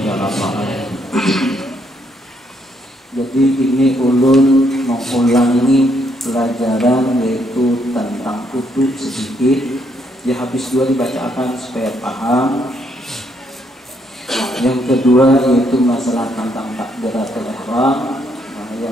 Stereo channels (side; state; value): both; normal; correlation 0.73